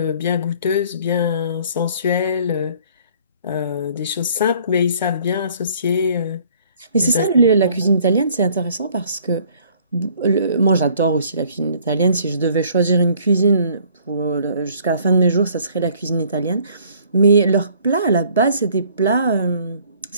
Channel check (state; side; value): inverted; both; correlation -0.58